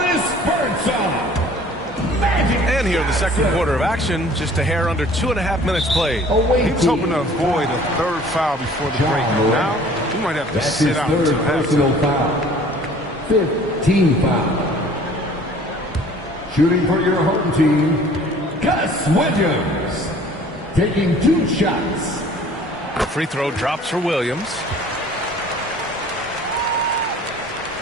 Birdsong. And here in the second quarter of action, just a hair under 2.5 minutes played. He was hoping to avoid a 3rd foul before the break. Now, he might have to sit out until halftime. 15 foul. Shooting for your home team, Gus Williams. Taking 2 shots. Free throw drops for Williams.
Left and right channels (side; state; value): both; normal; correlation 0.51